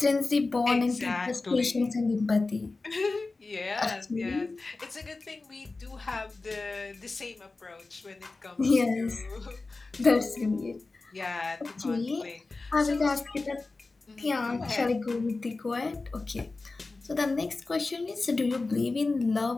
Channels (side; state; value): right; quieter; 3.6 dB